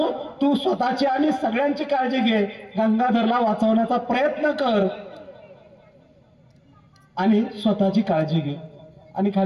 तू स्वतःची आणि सगळ्यांची काळजी घे, गंगाधरला वाचवण्याचा प्रयत्न कर आणि स्वतःची काळजी घे. आणि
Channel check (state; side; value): identical; both; correlation 1.00